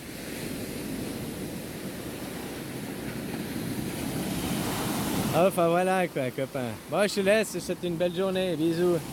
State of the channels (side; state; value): both; identical; correlation 1.00